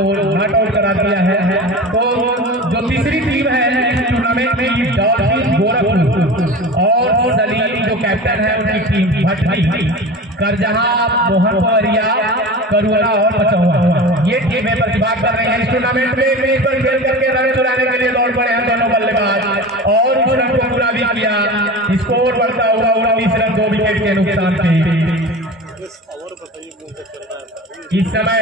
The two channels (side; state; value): both; normal; correlation 0.32